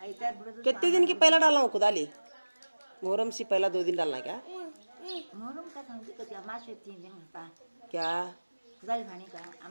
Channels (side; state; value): both; inverted; correlation -1.00